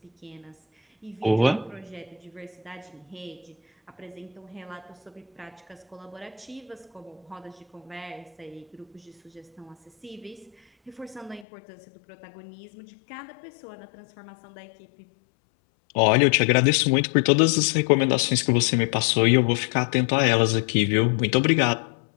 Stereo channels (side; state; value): right; drops out; at 11.5 s